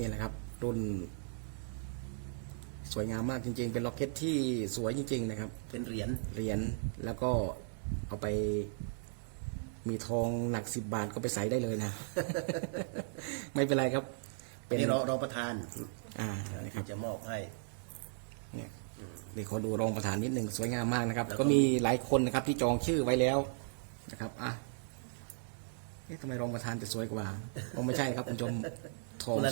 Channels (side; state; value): left; silent; digital silence